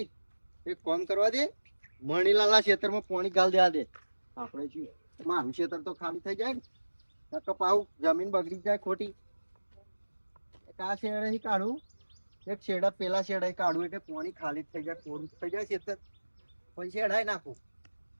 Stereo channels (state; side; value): inverted; both; correlation -1.00